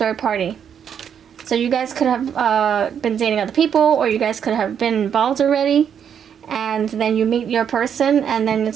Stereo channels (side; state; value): left; quieter; 8.2 dB